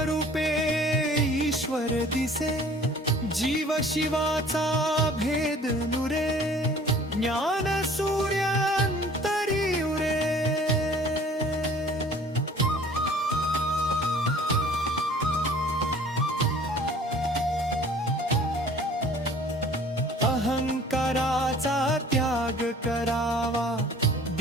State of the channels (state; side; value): normal; both; correlation 0.50